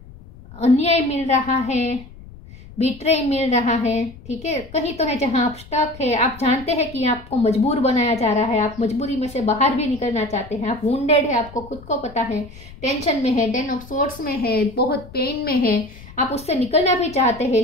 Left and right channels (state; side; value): noise; left; rumble, 19 dB below the sound